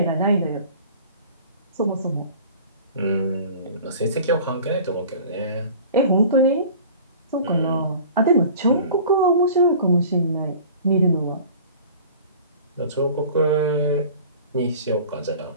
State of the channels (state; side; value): inverted; both; correlation -0.44